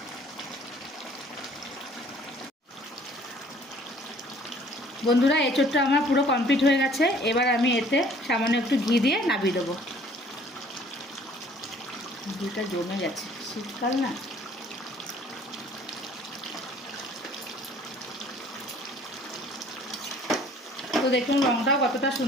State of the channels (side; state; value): both; normal; correlation 0.55